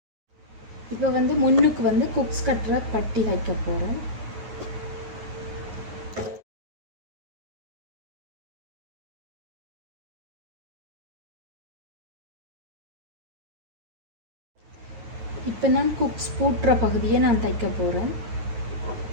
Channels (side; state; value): left; late; 9.4 ms